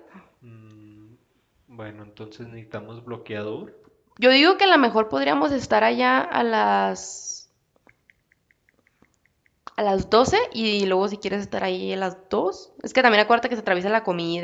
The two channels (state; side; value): identical; both; correlation 1.00